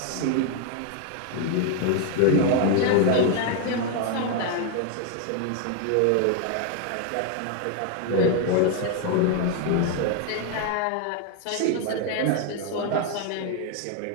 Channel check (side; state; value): both; different; correlation 0.01